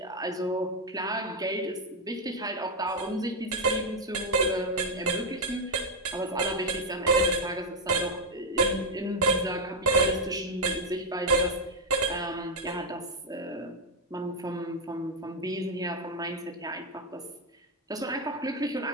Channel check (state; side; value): normal; both; correlation 0.01